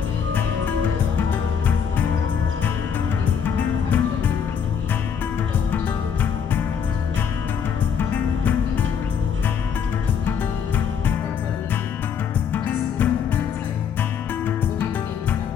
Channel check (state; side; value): quieter; right; 7.3 dB